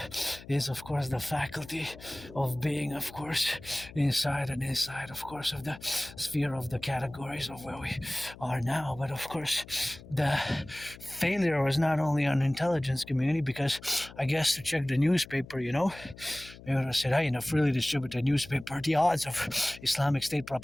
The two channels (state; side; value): noise; left; hum, 18 dB below the sound